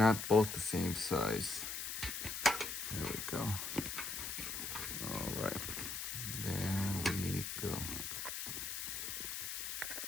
both the same size. There we go. All right, there we go.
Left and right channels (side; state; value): left; noise; hiss, 4 dB below the sound